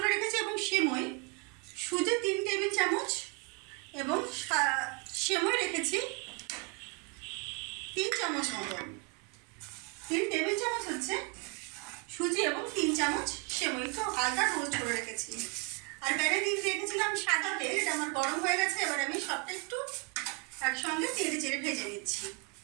রেখেছি এবং সেমই, সুজি 3 টেবিল চামচ এবং সেমই রেখেছি 3 চামচ মতন। 3 টেবিল চামচ হচ্ছে সুজি এবং 3 চামচ সেমই, একটু হালকা রোস্ট করে রেখেছি। আর প্যানে দিয়ে রেখেছিলাম সাদা তেল, এটা আমার গরম হয়ে গেছে। এবার আমি সবটা একটু একসঙ্গে চেড়ে চেড়ে ভেজে নিচ্ছি।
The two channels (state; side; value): quieter; left; 32.1 dB